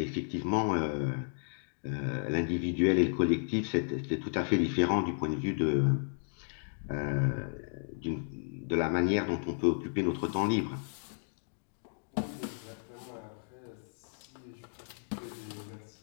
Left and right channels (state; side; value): silent; right; digital silence